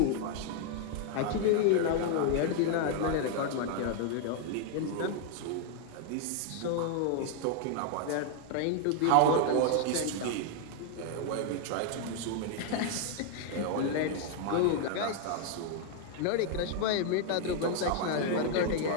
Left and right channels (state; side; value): different; both; correlation 0.00